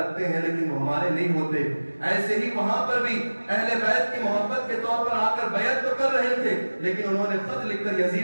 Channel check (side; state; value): both; inverted; correlation -1.00